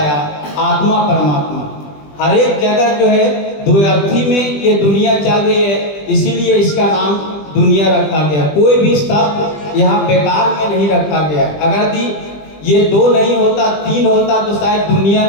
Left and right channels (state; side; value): late; right; 20 ms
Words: आत्मा परमात्मा। हर एक जगह जो है द्वैर्थी में ये दुनिया चल रही है, इसीलिए इसका नाम दुनिया रखा गया। कोई भी शब्द यहाँ बेकार में नहीं रखा गया। अगर ये दो नहीं होता, तीन होता तो शायद दुनिया